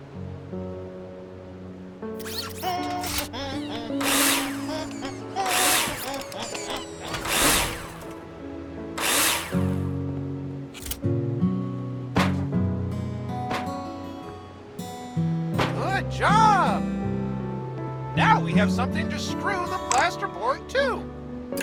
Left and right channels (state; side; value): identical; both; correlation 1.00